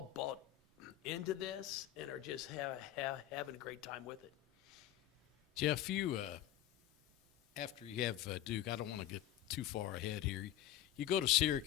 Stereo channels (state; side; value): quieter; right; 12.8 dB